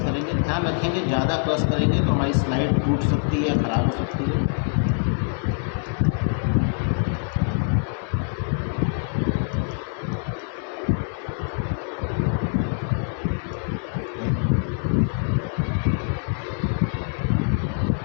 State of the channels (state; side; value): silent; right; digital silence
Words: ध्यान रखेंगे, ज़्यादा क्रश करेंगे तो हमारी स्लाइड टूट सकती है या ख़राब हो सकती है।